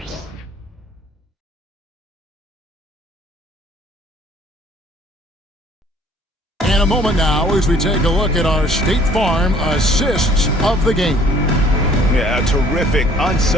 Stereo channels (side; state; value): both; normal; correlation 0.57